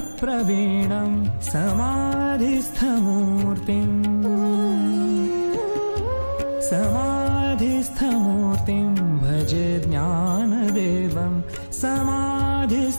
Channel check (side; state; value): both; inverted; correlation -1.00